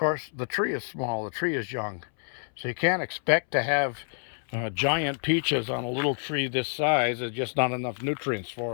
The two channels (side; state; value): right; silent; 59 dB below the other